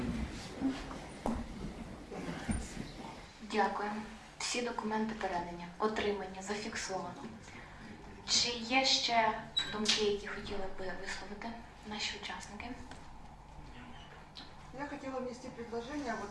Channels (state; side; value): identical; both; correlation 1.00